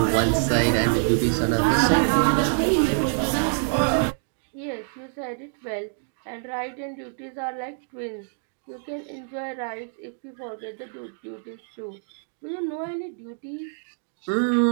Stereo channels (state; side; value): silent; left; digital silence